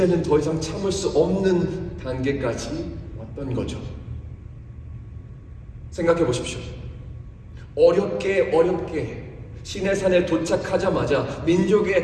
더 이상 참을 수 없는 단계까지 왔던 거죠. 생각해 보십시오. 어렵게 시내산에 도착하자마자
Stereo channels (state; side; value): identical; both; correlation 1.00